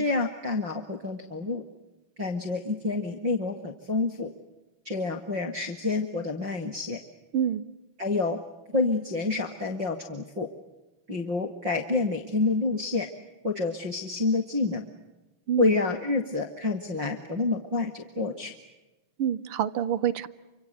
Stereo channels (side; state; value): left; late; 5.6 ms